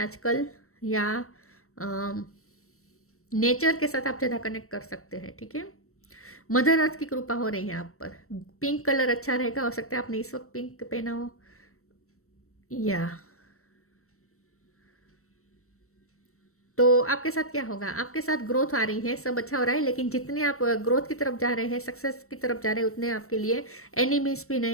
या नेचर के साथ आप ज़्यादा कनेक्ट कर सकते हैं, ठीक है। मदर अर्थ की कृपा हो रही है आप पर। पिंक कलर अच्छा रहेगा, हो सकता है आपने इस वक्त पिंक पहना हो, या तो आपके साथ क्या होगा, आपके साथ ग्रोथ आ रही है, सब अच्छा हो रहा है, लेकिन जितने आप ग्रोथ की तरफ जा रहे हैं, सक्सेस की तरफ जा रहे हैं, उतने आपके लिए एनिमीज भी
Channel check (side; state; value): right; late; 0.63 ms